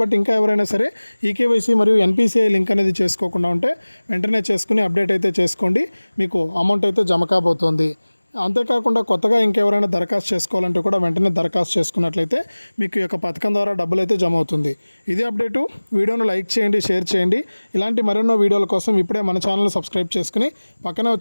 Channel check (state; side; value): inverted; both; correlation -1.00